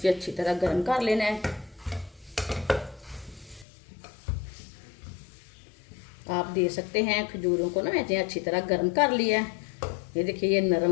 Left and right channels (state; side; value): drops out; right; at 3.7 s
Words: अच्छी तरह गर्म कर लेना है। आप दे सकते हैं खजूरों को ना मैंने अच्छी तरह गर्म कर लिया है। ये देखिए ये